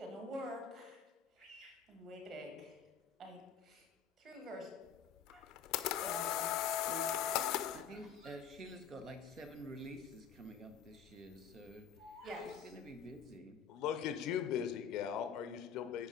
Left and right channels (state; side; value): quieter; right; 7.5 dB